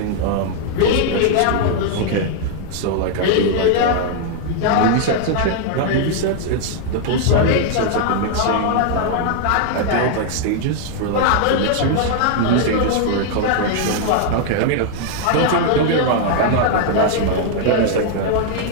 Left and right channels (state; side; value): different; both; correlation 0.00